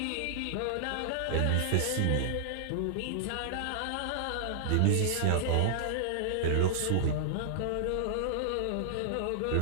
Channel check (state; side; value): different; both; correlation -0.01